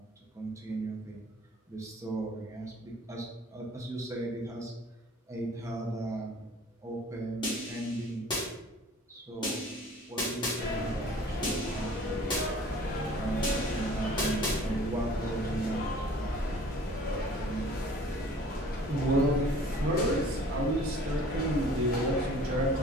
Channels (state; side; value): normal; both; correlation 0.50